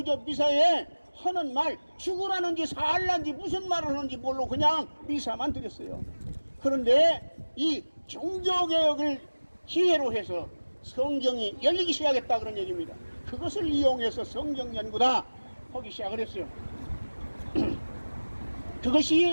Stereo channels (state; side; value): inverted; both; correlation -1.00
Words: 미사에 하는 말, 죽으라는지 살라는지 무슨 말을 하는지 모르고 그냥 미사만 드렸어요. 그런데 이 종교개혁을 기회로 해서 성경이 열리기 시작했다 그런 얘기입니다. 그것을 이용해서 성경 연구다 하기 시작을 했어요.